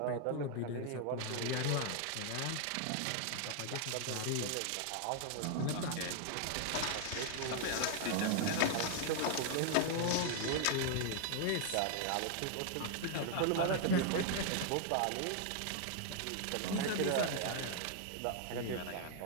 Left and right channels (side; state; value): both; different; correlation 0.00